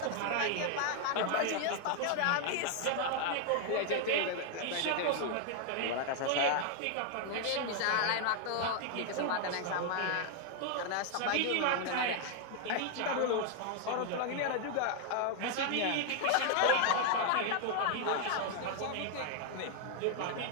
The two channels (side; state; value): both; different; correlation 0.00